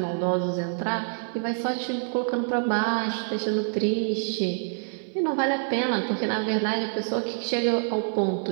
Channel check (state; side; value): silent; left; 57 dB below the other